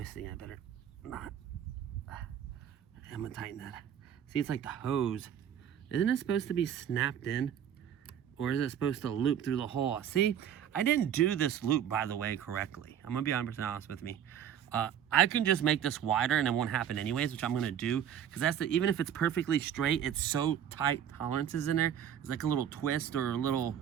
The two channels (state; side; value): quieter; left; 9.5 dB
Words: I better not. I'm going to tighten that. See, it's like the hose. Isn't it supposed to be snapped in? Or is it supposed to loop through the hole? See, I didn't do this loop, by the way, correctly. I'm going to be 100% honest with me. I can just make this wider and it won't happen anyways, which I'm going to do. Because that's even if it's perfectly straight, it's so tight tolerances in there. It's like a little twist or a little